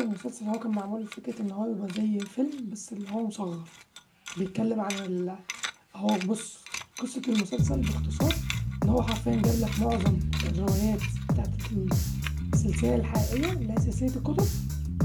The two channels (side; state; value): both; identical; correlation 1.00